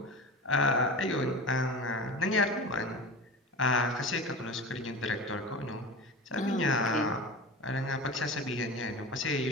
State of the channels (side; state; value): both; normal; correlation 0.31